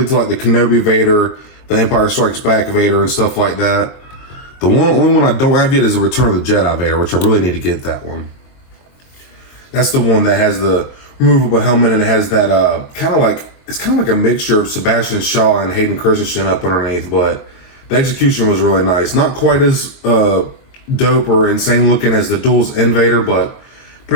to like the Kenobi Vader, the Empire Strikes Back Vader, and stuff like that. The only one I don't have yet is the Return of the Jedi Vader, which I really need to get that one. That's the one that has the removable helmet, and it has that kind of like a mixture of Sebastian Shaw and Hayden Christensen up underneath, but the execution was really nice. Not quite as dope or insane looking as the Duels End Vader, but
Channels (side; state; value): right; late; 22 ms